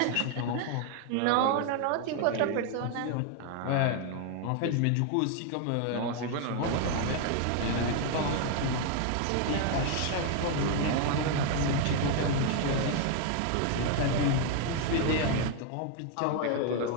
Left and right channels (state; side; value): different; both; correlation 0.00